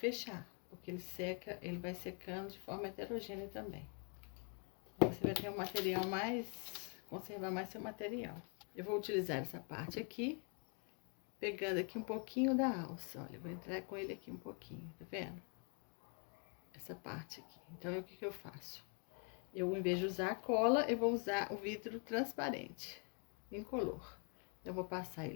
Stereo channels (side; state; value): right; quieter; 39.4 dB